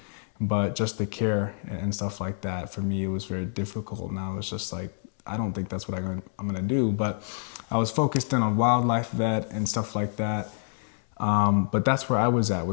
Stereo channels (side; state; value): right; silent; 60 dB below the other